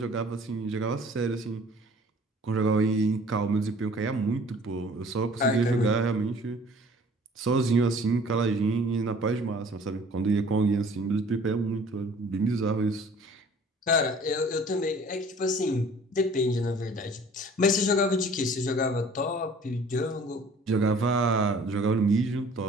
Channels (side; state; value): both; normal; correlation 0.51